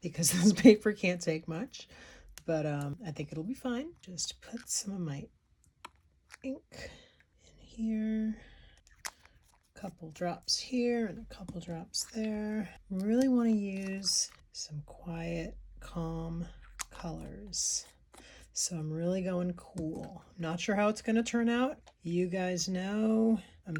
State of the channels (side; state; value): both; identical; correlation 1.00